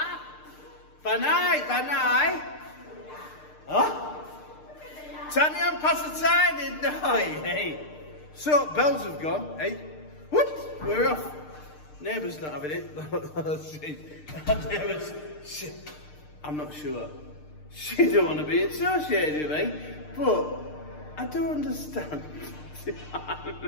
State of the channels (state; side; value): late; right; 6.6 ms